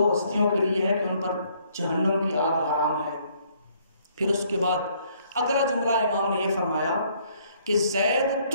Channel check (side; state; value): both; inverted; correlation -0.65